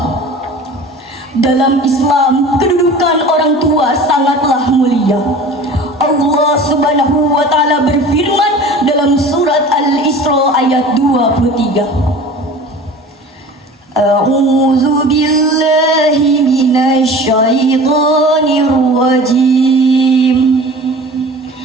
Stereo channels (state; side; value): normal; both; correlation 0.40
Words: Dalam Islam, kedudukan orang tua sangatlah mulia. Allah Subhanahu wa taala berfirman dalam surat Al-Isra ayat 23. A'udzu billahi minasy syaithanir rajim.